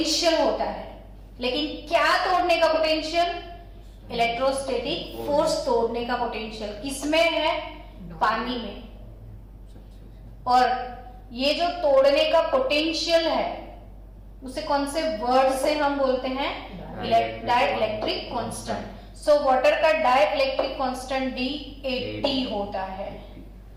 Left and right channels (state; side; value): identical; both; correlation 1.00